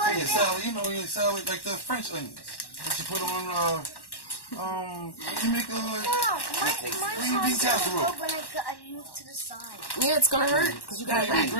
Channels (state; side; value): late; right; 1.1 ms